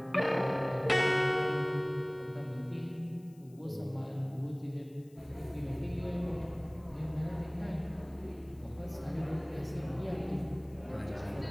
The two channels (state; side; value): noise; left; hiss, 30 dB below the sound